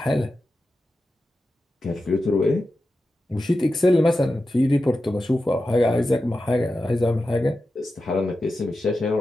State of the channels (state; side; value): normal; both; correlation 0.92